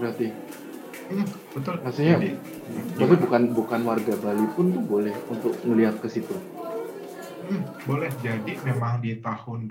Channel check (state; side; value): identical; both; correlation 1.00